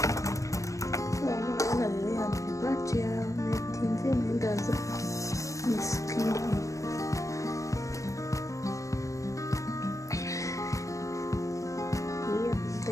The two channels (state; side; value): late; right; 0.16 ms